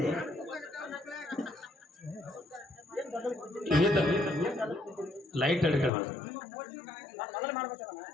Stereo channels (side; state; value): right; drops out; at 5.9 s